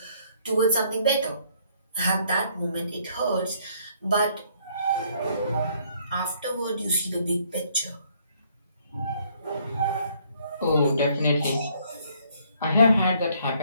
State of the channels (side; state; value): both; inverted; correlation -0.65